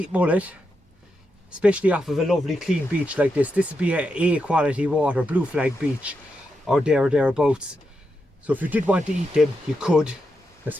mullet, especially off of a lovely clean beach like this. This would be a quality water, blue flag beach, or thereabouts. So if you did want to eat them, you could. They're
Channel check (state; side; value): normal; both; correlation 0.85